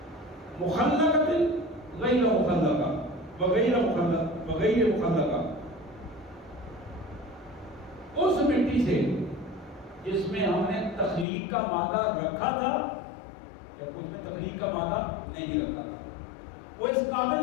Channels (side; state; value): right; drops out; at 11.2 s